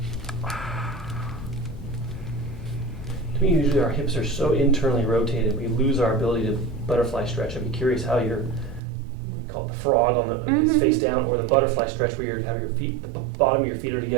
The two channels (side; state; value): left; drops out; at 8.8 s